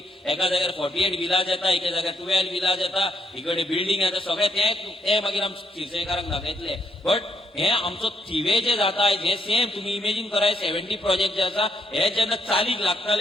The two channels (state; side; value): normal; both; correlation 0.75